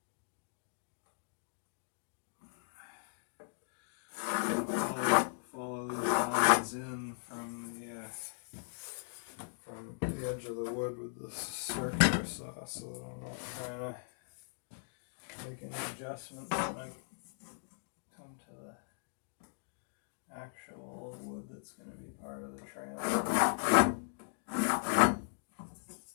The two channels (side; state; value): right; silent; digital silence